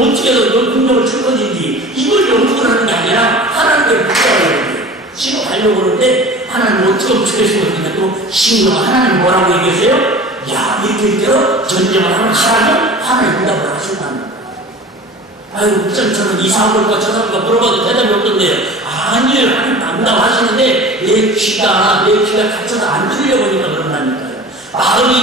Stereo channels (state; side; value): normal; both; correlation 0.39